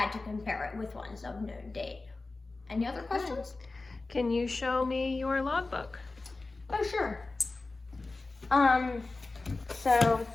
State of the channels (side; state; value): right; quieter; 3.4 dB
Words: to compare it with ones of known date. Any other questions? Can you show me your logbook? Oh, sure. So